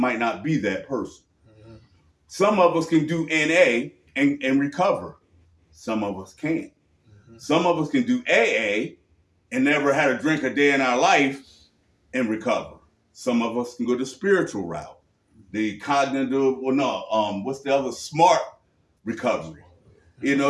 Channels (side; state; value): both; identical; correlation 1.00